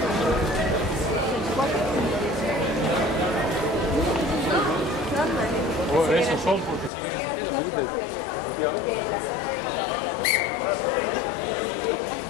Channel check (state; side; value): drops out; right; at 6.9 s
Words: Esos son porque siguen existiendo.